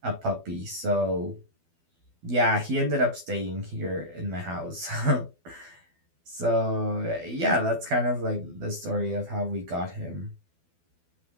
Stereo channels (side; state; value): left; late; 12 ms